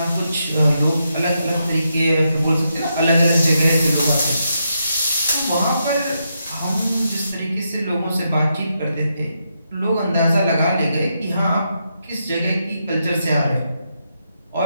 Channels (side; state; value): both; inverted; correlation -0.82